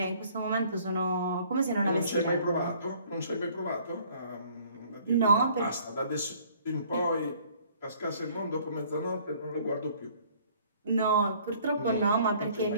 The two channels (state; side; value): inverted; both; correlation -0.57